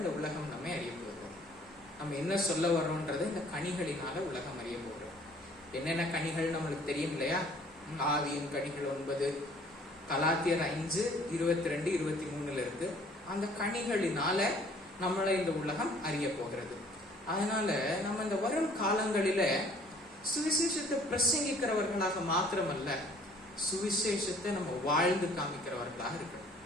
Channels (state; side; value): normal; both; correlation 0.56